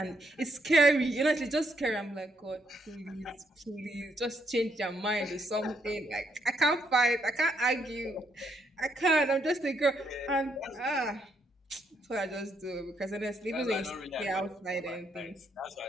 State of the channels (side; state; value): both; normal; correlation 0.75